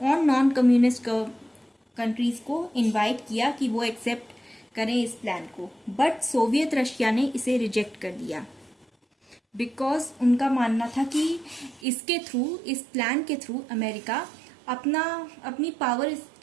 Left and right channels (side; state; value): left; drops out; at 11.9 s